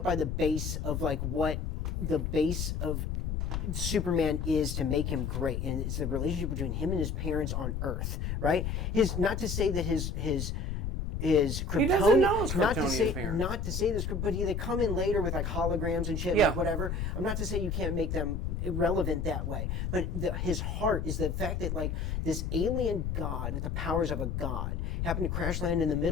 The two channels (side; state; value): left; noise; rumble, 2 dB below the sound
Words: by the base of like what the base of Superman is to make him great, and it's the relationship between him and his parents on Earth, right? Not to say that his Kryptonian, he doesn't know his Kryptonian parents. Not to say this, but they come in later with like holograms and shit, like whatever. I'm not to say you can't make them irrelevant that way, but his heart is the fact that like this alien god with the powers of a god happened to crash land in the